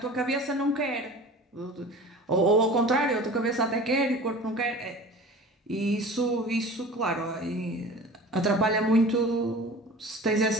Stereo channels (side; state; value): both; normal; correlation 0.39